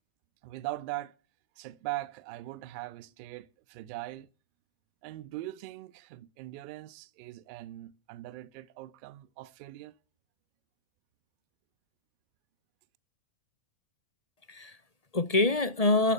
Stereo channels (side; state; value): right; late; 1.8 ms